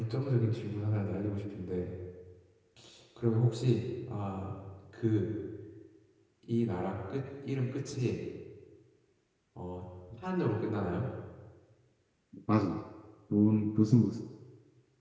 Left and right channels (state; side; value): identical; both; correlation 1.00